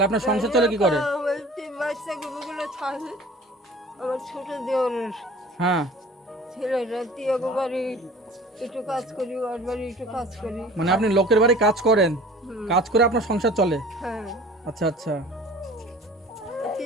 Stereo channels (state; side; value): normal; both; correlation 0.45